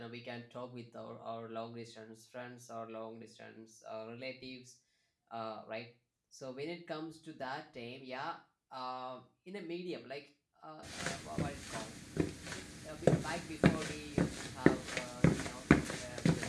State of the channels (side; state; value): both; identical; correlation 1.00